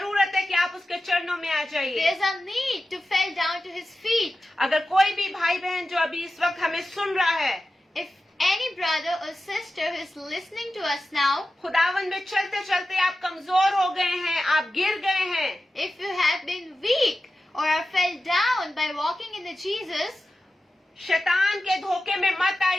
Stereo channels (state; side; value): normal; both; correlation 0.93